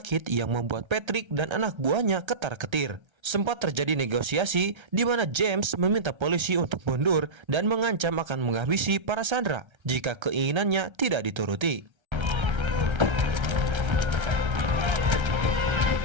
yang membuat Patrick dan anak buahnya ketar-ketir. Sempat terjadi negosiasi di mana James meminta polisi untuk mundur dan mengancam akan menghabisi para sandera jika keinginannya tidak dituruti.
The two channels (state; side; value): late; left; 1.3 ms